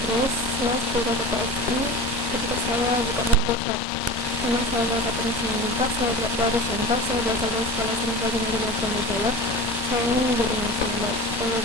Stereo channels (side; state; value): both; normal; correlation 0.31